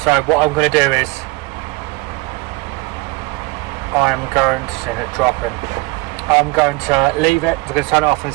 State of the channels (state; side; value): quieter; left; 23.5 dB